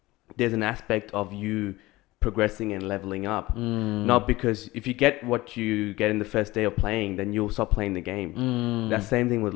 there's an aspect of you progressing and leveling up. Not because if you get what you get in the first day of playing, then you'll stop playing the game. That same thing with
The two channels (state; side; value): quieter; right; 19.3 dB